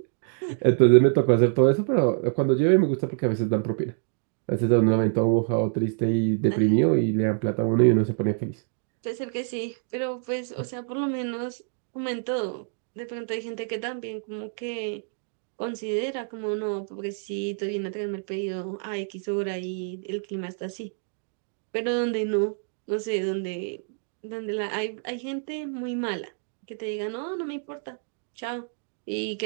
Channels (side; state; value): left; silent; digital silence